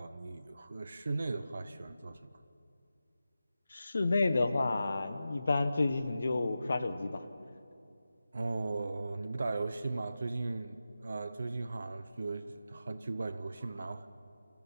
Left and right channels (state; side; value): inverted; both; correlation -0.92